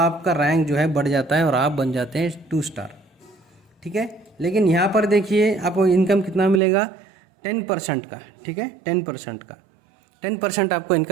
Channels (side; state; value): left; drops out; at 6.6 s